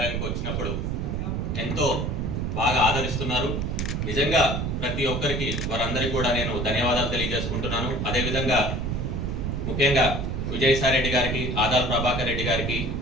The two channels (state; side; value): noise; right; rumble, 1 dB below the sound